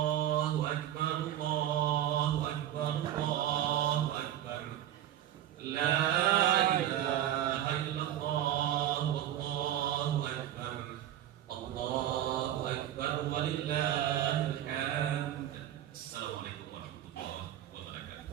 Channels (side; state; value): left; quieter; 11.9 dB